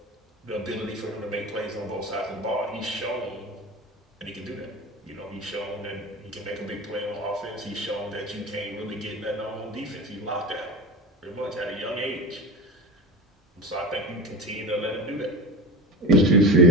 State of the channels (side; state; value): both; normal; correlation 0.29